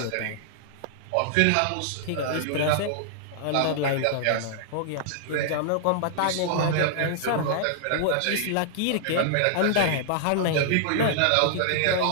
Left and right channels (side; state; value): both; different; correlation -0.01